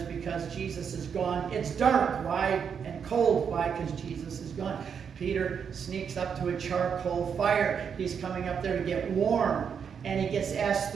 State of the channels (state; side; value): quieter; left; 7.0 dB